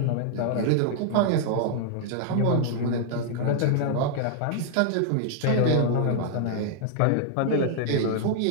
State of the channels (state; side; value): different; both; correlation -0.01